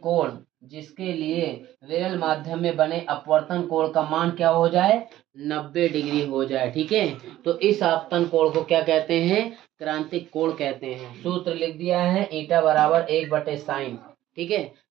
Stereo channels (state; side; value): quieter; left; 14.1 dB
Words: कोण जिसके लिए विरल माध्यम में बने अपवर्तन कोण का मान क्या हो जाए, 90 डिग्री हो जाए। ठीक है, तो इस आपतन कोण को क्या कहते हैं, क्रांतिक कोण कहते हैं। सूत्र लिख दिया है ईटा बराबर 1/sin। ठीक है,